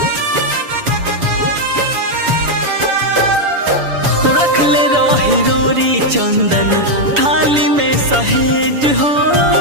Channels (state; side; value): late; left; 7.1 ms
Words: रखले रही रोरी चंदन थाली में सहेज हो।